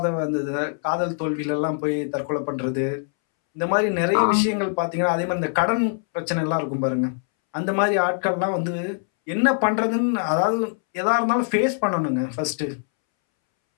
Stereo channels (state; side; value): silent; right; 63 dB below the other